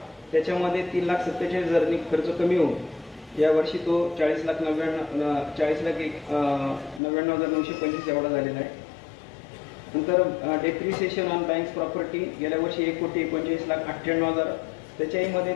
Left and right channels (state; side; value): drops out; right; at 7.0 s